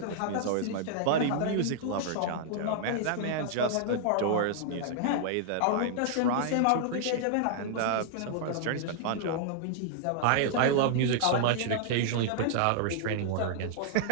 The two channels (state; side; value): different; both; correlation -0.01